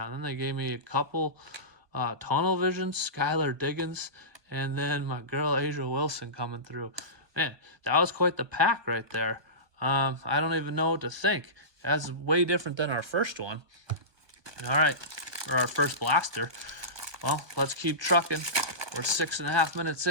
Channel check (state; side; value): late; left; 1.2 ms